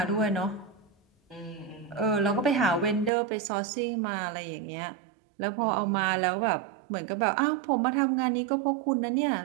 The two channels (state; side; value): drops out; left; at 3.1 s